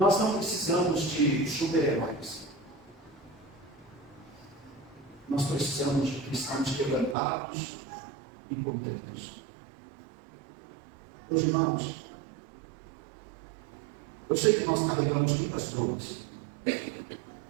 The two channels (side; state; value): left; drops out; at 7.2 s